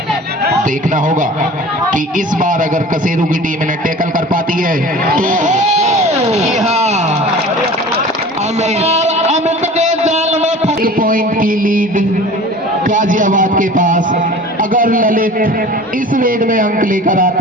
देखना होगा कि इस बार अगर कसेरू की टीम इन्हें टैकल कर पाती है तो अमित के जाल में 1 पॉइंट की लीड गाजियाबाद के पास। अगर ललित इस रेड में अंक लेकर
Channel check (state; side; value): normal; both; correlation 0.41